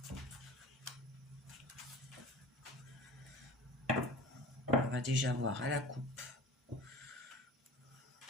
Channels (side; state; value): both; normal; correlation 0.39